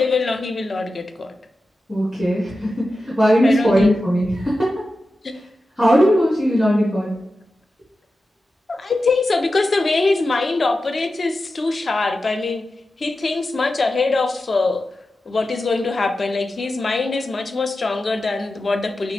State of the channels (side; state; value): both; normal; correlation 0.92